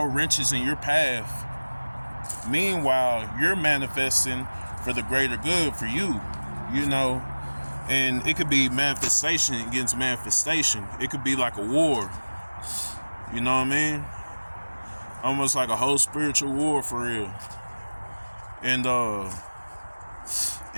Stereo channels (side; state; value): both; inverted; correlation -1.00